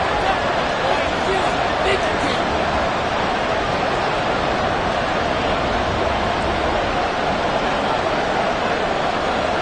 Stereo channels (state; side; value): identical; both; correlation 1.00